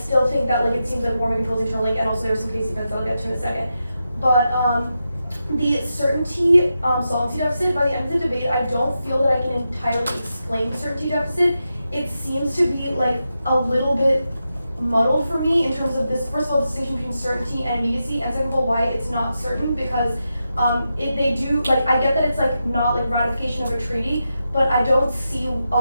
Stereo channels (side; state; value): both; inverted; correlation -0.88